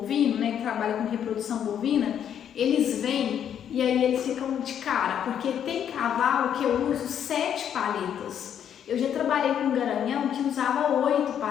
né, que trabalham com reprodução bovina, eles vêm e aí eles ficam de cara, porque tem cavalo que eu uso 7 palhetas. Eu já trabalhei com um garanhão que usava 8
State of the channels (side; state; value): right; quieter; 9.2 dB